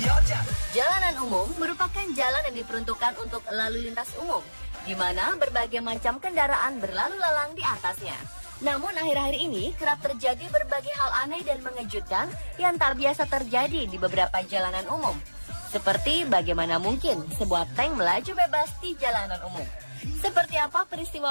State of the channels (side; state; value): both; inverted; correlation -1.00